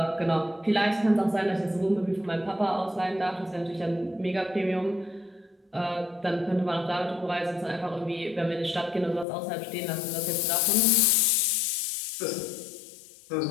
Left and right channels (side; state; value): right; drops out; at 9.2 s